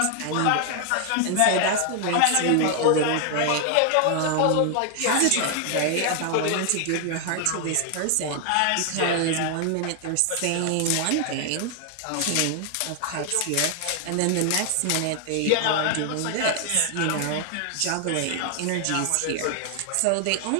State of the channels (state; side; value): different; both; correlation 0.00